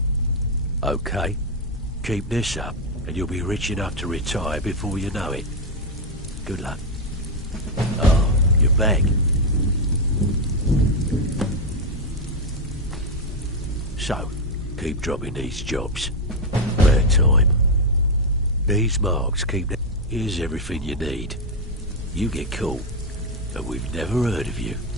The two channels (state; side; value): normal; both; correlation 0.05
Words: Okay. Keep this up, and you'll be rich enough to retire before you know it. Good luck. Oh, you're back. So, keep dropping these jobs. Bad time. These marks keep... Here's everything you need. You get caught, and we've never heard of you.